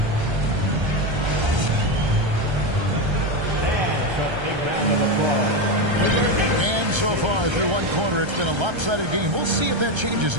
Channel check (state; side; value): late; left; 1.3 ms